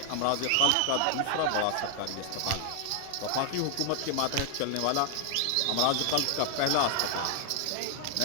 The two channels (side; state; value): both; different; correlation 0.00